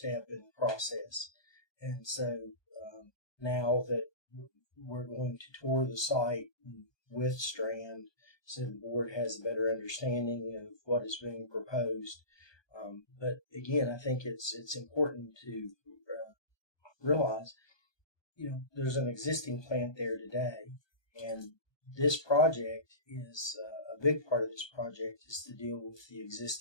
in the process, and so now that we're going to tour the site with Strand, so the board has a better understanding of what is being proposed. But again, I think it's important to realize, there's an existing plant there today, and this project is a big part of this project is to deal with the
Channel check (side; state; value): right; late; 1.2 ms